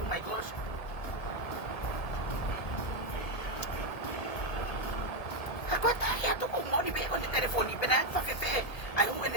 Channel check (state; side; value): late; right; 1.7 ms